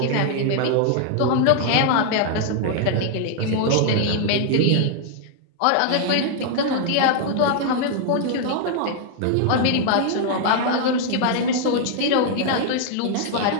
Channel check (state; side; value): different; both; correlation 0.00